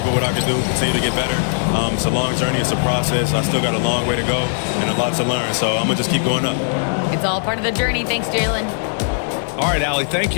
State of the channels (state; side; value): silent; right; 60 dB below the other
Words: what I can do, continue to get better. It's a long journey. It's a process. I still got a long way to go and a lot to learn. So I'm going to just keep going up. It's all part of the journey. Thanks, Jaylen. All right, Allie, thank